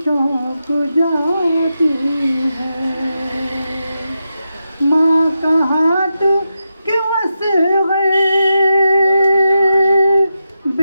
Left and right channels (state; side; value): inverted; both; correlation -0.88